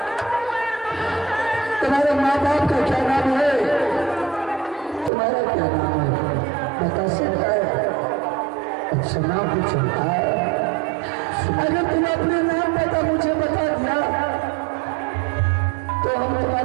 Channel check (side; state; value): left; drops out; at 5.1 s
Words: तुम्हारे माँ बाप का क्या नाम है, तुम्हारा क्या नाम है बता सकता है? अच्छा नाम पूछो। अगर तुम अपने नाम पता मुझे बता दिया तो हम